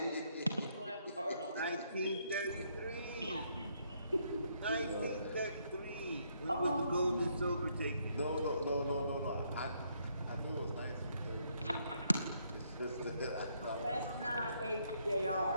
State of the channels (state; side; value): inverted; both; correlation -0.72